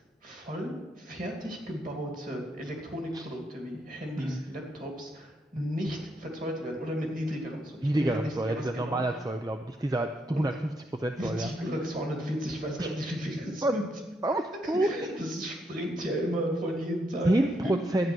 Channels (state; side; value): normal; both; correlation 0.78